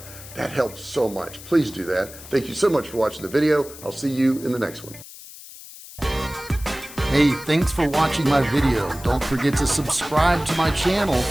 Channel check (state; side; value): noise; left; hiss, 16 dB below the sound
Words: That helps so much. Please do that. Thank you so much for watching the video. I'll see you in the next one. Hey, thanks for watching my video. Don't forget to subscribe to my channel